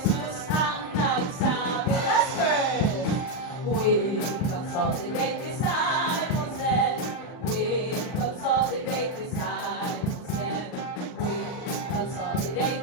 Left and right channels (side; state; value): right; late; 39 ms